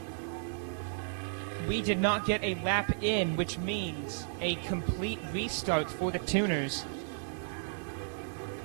We did not get a lap in, which means a complete restart for the tuners.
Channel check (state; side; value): silent; left; digital silence